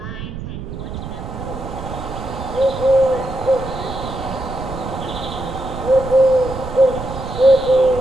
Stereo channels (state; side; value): noise; right; rumble, 9 dB below the sound